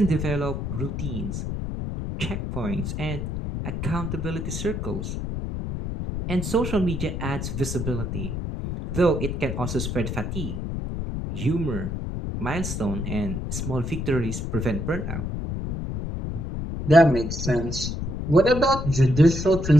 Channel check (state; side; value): noise; left; rumble, 4 dB below the sound